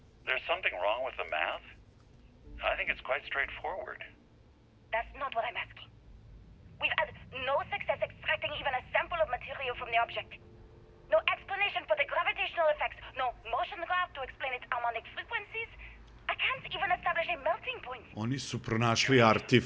There's something wrong with the math? I think it's quite straightforward. That's not what I'm asking. We've had no success extracting even a sample of material from the object. No explanation for the gravitational effects, no motion graph to explain its harmonic frequencies. I can't even establish a melting point. Oni su pronašli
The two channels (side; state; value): both; identical; correlation 1.00